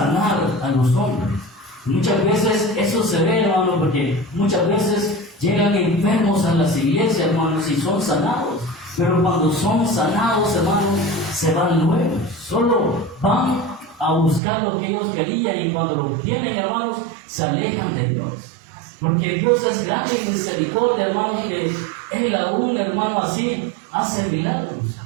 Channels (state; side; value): drops out; left; at 14.4 s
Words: a los hombres. Muchas veces eso se ve, hermano, porque muchas veces llegan enfermos a las iglesias, hermanos, y son sanados. Pero cuando son sanados, hermanos, se van luego. Solo van a buscar lo que ellos querían, y cuando lo obtienen, hermanos, se alejan de Dios. Porque Dios es grande y misericordia, hermano, que Él aún, hermano, así hace milagros.